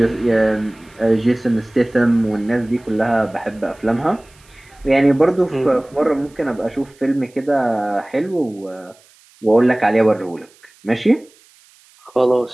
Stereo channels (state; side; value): noise; right; hiss, 29 dB below the sound